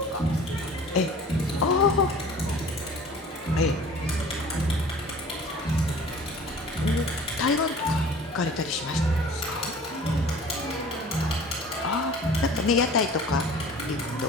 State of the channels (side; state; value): both; normal; correlation 0.45